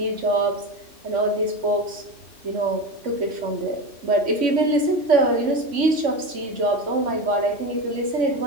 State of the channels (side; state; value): left; late; 3.5 ms